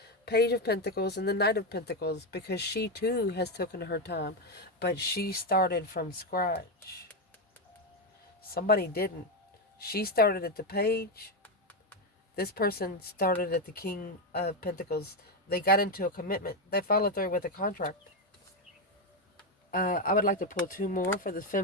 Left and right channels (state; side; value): normal; both; correlation 0.08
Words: Page of Pentacles and the Knight of Pentacles, because she too has taken her time. But she started from scratch. Somebody didn't. She started at the Page. This person started at the King of Pentacles. They got into a commitment. They followed through with a contract. I would like to pull 2 more for the